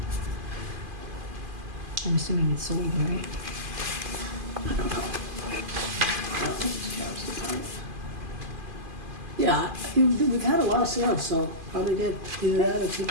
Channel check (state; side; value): late; left; 2.5 ms